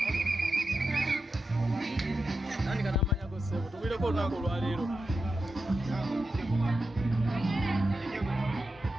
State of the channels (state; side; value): normal; both; correlation 0.89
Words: tandika n'amanyago ssebo tugulireko olunaku olwaleero